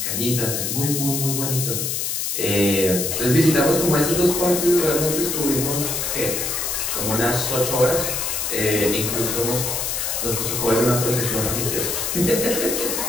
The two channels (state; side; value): noise; left; hiss, 1 dB below the sound